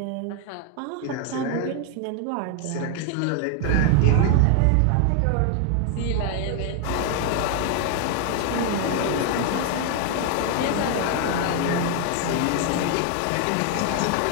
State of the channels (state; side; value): different; both; correlation 0.00